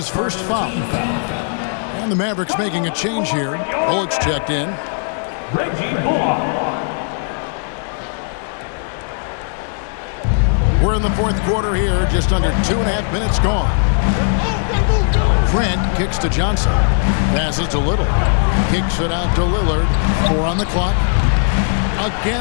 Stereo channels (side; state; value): right; silent; 67 dB below the other